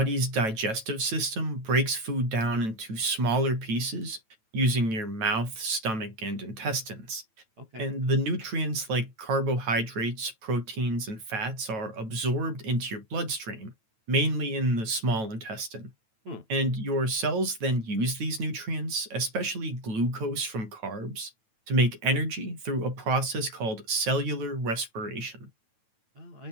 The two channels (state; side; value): late; left; 9.1 ms